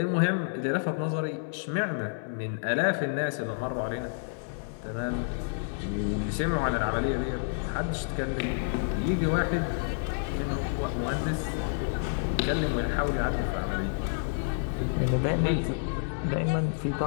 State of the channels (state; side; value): silent; right; 58 dB below the other